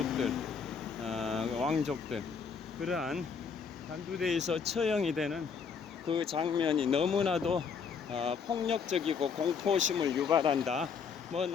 왕족들, 그러한 단두대에서 처형이 되는 그 장면이 너무나도 폭력적이고 공포심을 유발한다. 뭐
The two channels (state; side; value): quieter; right; 6.1 dB